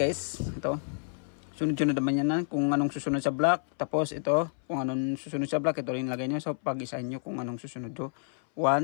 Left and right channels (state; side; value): silent; right; 58 dB below the other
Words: Ito. Sunod-sunod naman yan kung anong susunod sa block. Tapos ito, kung anong susunod sa block, ito rin lagay nyo. So pag-isahin nyo kung anong susunod. 1